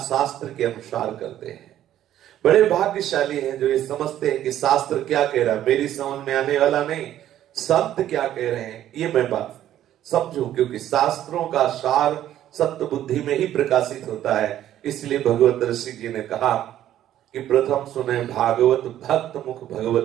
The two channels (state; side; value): quieter; left; 12.0 dB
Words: शास्त्र के अनुसार करते हैं। बड़े भाग्यशाली हैं जो ये समझते हैं कि शास्त्र क्या कह रहा है, मेरी समझ में आने वाला नहीं, संत क्या कह रहे हैं ये मैं बात समझूं, क्योंकि शास्त्रों का सार सत्य बुद्धि में ही प्रकाशित होता है। इसलिए भगवत ऋषि जी ने कहा कि प्रथम सुने भागवत भक्त मुख भगवत